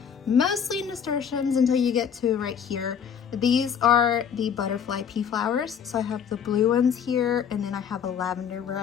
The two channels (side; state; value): right; quieter; 7.7 dB